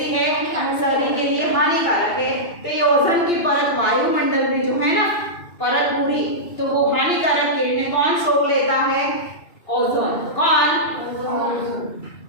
है, शरीर के लिए हानिकारक है। तो ये ओजोन की परत वायुमंडल में जो है ना परत पूरी, तो वो हानिकारक किरणें कौन सोख लेता है, ओजोन। कौन,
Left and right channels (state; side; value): late; right; 2.8 ms